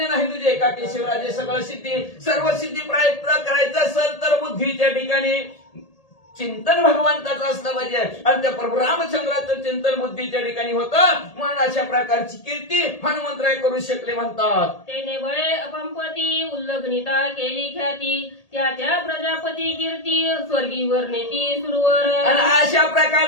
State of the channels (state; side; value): late; right; 1.8 ms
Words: नाही तुझे एका केशवराजे सगळं सिद्धी. सर्व सिद्धी प्राप्त करायचं असेल तर बुद्धीच्या ठिकाणी चिंतन भगवंताचं असलं पाहिजे. आणि त्या प्रभू रामचंद्राचं चिंतन बुद्धीच्या ठिकाणी होतं. म्हणून अशा प्रकारची कीर्ती हनुमंतराय करू शकले म्हणतात. तेने बळे अपंपती उल्लग्निता केली ख्याती त्या त्या प्रजापती कीर्ती स्वर्गीवर नेती सुरवर. आणि अशा